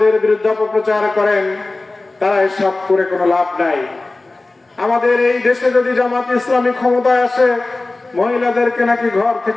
বিরুদ্ধে অপপ্রচার করেন, তারা এসব করে কোনো লাভ নাই। আমাদের এই দেশে যদি জামাত ইসলামী ক্ষমতায় আসে, মহিলাদেরকে নাকি ঘর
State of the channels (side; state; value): right; quieter; 3.2 dB